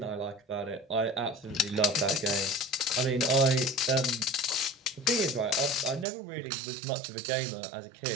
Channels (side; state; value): left; drops out; at 6.1 s